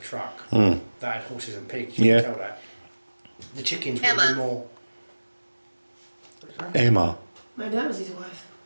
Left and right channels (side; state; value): both; inverted; correlation -1.00